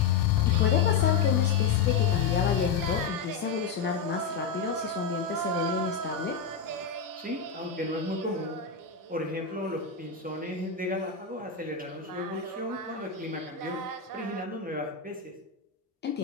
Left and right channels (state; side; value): quieter; right; 5.9 dB